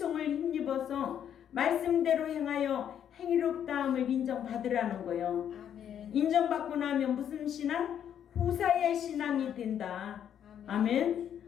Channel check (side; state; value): right; quieter; 9.3 dB